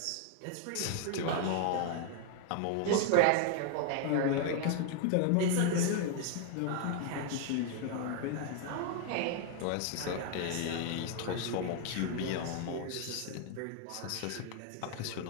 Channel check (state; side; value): different; both; correlation 0.00